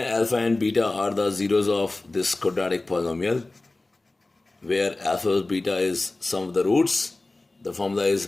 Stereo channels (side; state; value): right; quieter; 3.0 dB